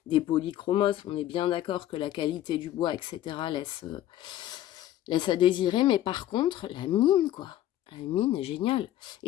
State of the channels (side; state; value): right; quieter; 13.0 dB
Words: polychromos, on est bien d'accord que la qualité du bois, etc. laisse à désirer, mais par contre, la mine, quoi. La mine est géniale.